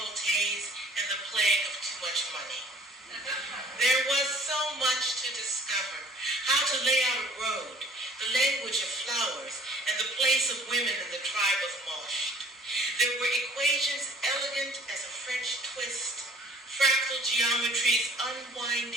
and the plague of too much money. There was so much to discover: how to lay out a road, the language of flowers, and the place of women in the tribe of Mosh. There were equations elegant as a French twist, fractal geometry's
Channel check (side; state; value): both; normal; correlation 0.53